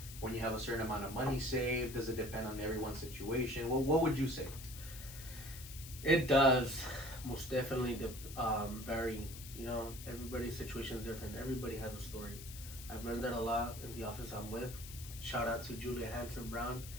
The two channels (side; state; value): left; noise; hiss, 13 dB below the sound